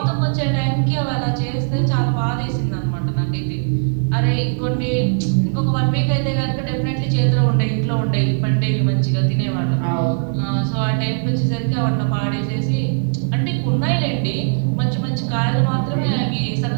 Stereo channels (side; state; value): left; silent; 64 dB below the other